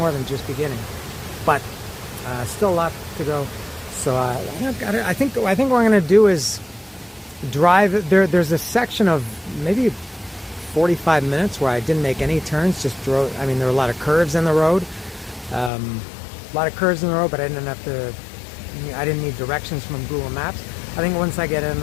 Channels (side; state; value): right; drops out; at 15.7 s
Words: than just beginning, but still a lot to go. So I think what I'm going to do is drive. There's a section of maybe 45 minutes where I didn't make any turns, just drove. I mean, there were a lot of curves in the road, but I didn't need directions from Google Maps. I think once I get